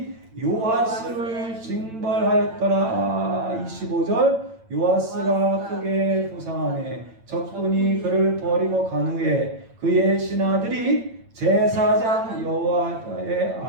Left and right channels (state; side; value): late; left; 8.9 ms